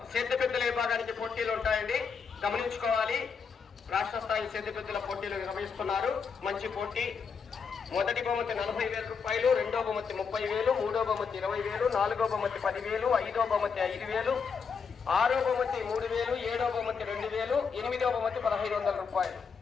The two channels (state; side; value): quieter; right; 5.9 dB